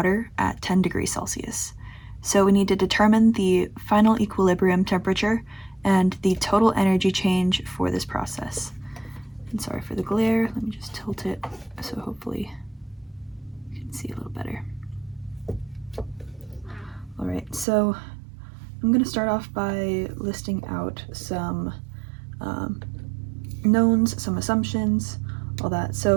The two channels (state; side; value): drops out; left; at 17.7 s